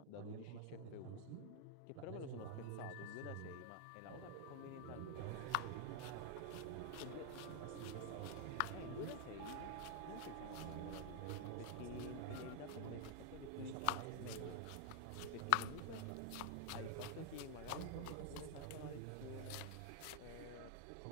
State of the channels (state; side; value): different; both; correlation 0.00